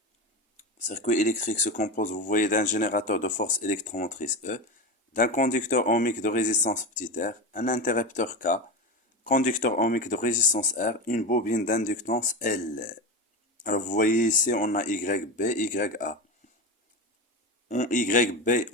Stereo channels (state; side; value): normal; both; correlation 0.20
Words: vous voyez, d'un générateur de force électromotrice E, d'un conducteur ohmique de résistance petit r, un interrupteur K, conducteur ohmique de résistance R, une bobine d'inductance L. Alors vous voyez ici, on a YB, YA. En YB,